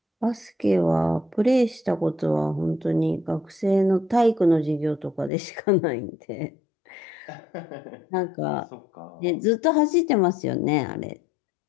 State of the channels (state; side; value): drops out; right; at 5.3 s